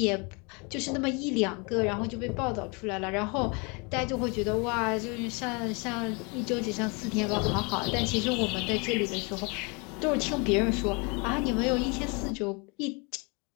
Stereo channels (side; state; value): right; quieter; 30.9 dB